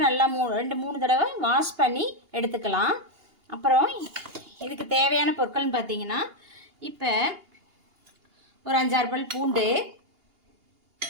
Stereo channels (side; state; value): left; late; 2.8 ms